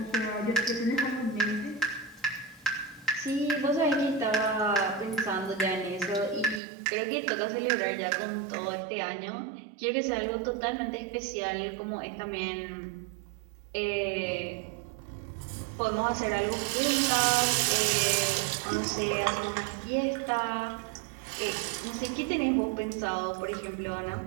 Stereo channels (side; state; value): left; drops out; at 6.6 s